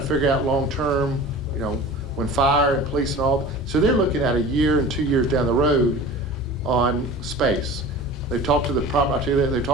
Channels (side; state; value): both; normal; correlation 0.38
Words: figure out long-term, you know, when fire and police and all. So they're looking at a year and 2 years down the road on space. They've talked to the they've